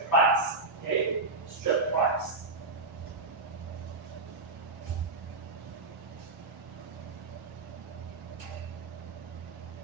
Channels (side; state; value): left; quieter; 3.4 dB